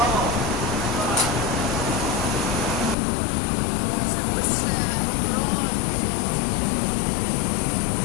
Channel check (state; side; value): drops out; right; at 3.0 s